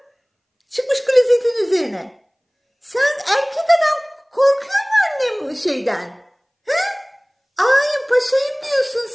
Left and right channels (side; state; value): both; identical; correlation 1.00